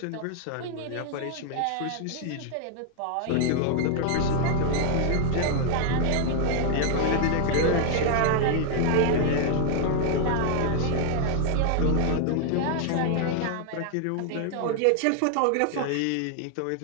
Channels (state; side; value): different; both; correlation 0.00